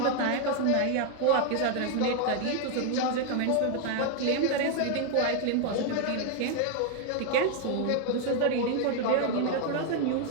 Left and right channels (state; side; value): different; both; correlation 0.00